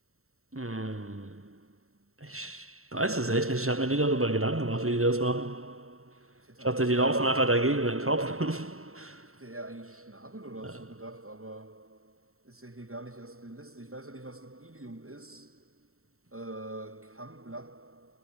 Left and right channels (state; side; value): late; left; 0.63 ms